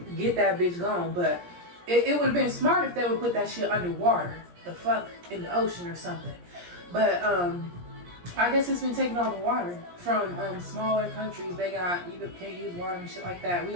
get that bitch gone. But it would have been smart if they would put that shit underwater, the fuck, in the ocean or something. But I guess it's been taking all the water from smaller countries. They can't use water and shit like that. We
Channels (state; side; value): late; left; 17 ms